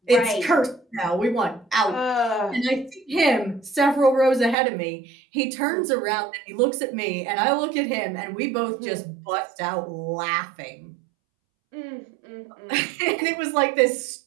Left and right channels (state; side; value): drops out; left; at 4.5 s